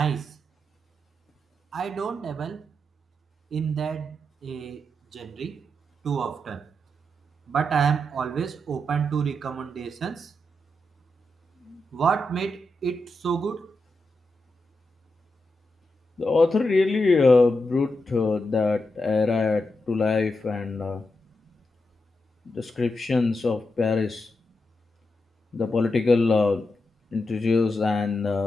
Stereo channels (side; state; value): both; normal; correlation 0.86